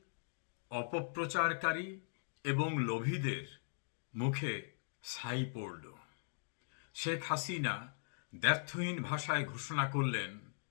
অপপ্রচারকারী এবং লোভীদের মুখে ছাই পড়ল। শেখ হাসিনা দ্ব্যর্থহীন ভাষায় ঘোষণা করলেন,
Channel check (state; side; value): silent; right; digital silence